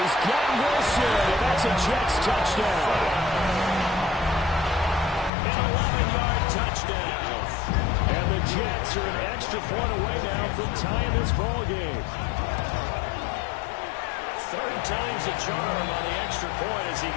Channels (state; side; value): drops out; right; at 5.3 s